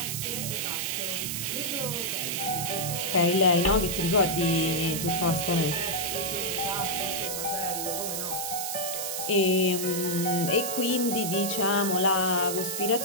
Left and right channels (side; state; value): right; noise; hiss, 3 dB below the sound